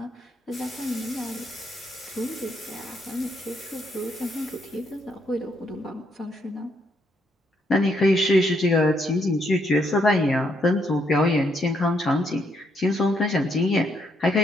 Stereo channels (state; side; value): normal; both; correlation 0.75